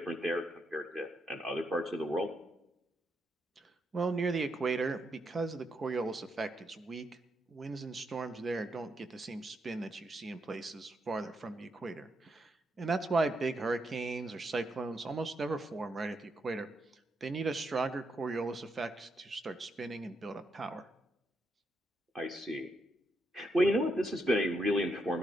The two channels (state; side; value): normal; both; correlation 0.80